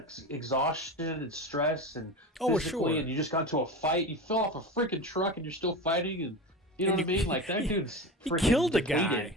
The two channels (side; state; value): both; normal; correlation 0.26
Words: exhaustion and stress and physically, sure. And you just got into a fight. You fell off a freaking truck and you're still fighting, and you know what I mean? Like, that dude's freaking killed a depleted. guy.